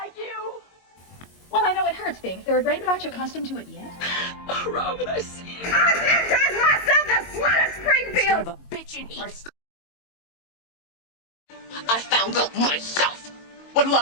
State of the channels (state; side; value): late; right; 22 ms